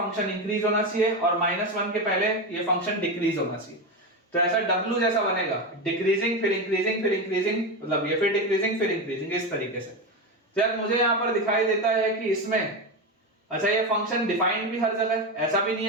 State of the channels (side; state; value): both; normal; correlation 0.16